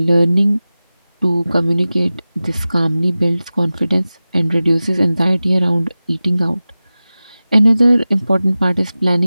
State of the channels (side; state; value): both; inverted; correlation -0.96